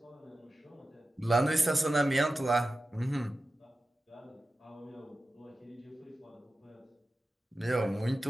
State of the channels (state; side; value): normal; both; correlation 0.94